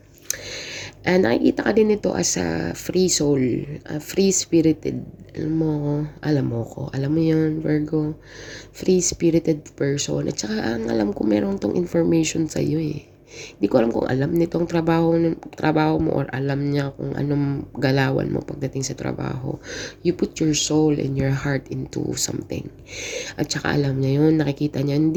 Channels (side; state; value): both; identical; correlation 1.00